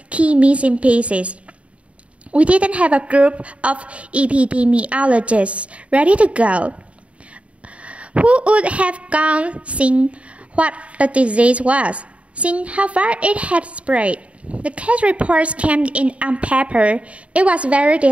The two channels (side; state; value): left; late; 0.063 ms